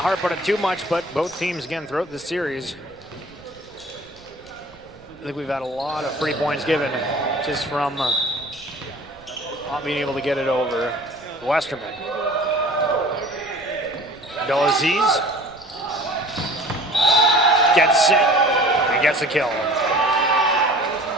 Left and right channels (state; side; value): noise; right; rumble, 25 dB below the sound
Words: harp on it too much, but both teams, again, throughout this series, I think we've had a lot of free points given just from not being able to get it over Westerman. Abdelaziz gets it and gets a kill.